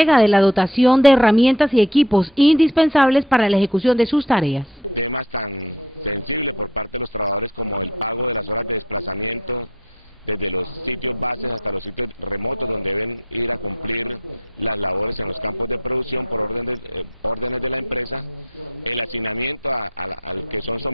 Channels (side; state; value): both; normal; correlation 0.51